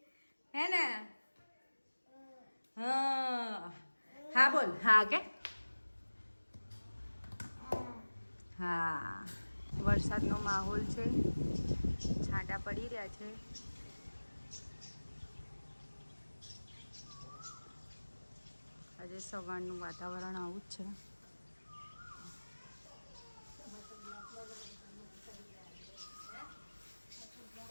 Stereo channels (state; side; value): inverted; both; correlation -1.00